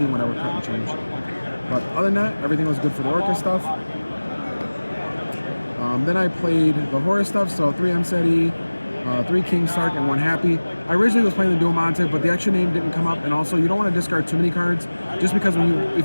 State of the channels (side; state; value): both; inverted; correlation -1.00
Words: when I would cut and change. But other than that, everything was good for the Orcust stuff. Then I played the Horus stuff, so 3 Mseti, 3 King Sark, and 1 Happy. I originally was playing the Dual Monte, but the extra name didn't come up, and also you don't want to discard too many cards, just because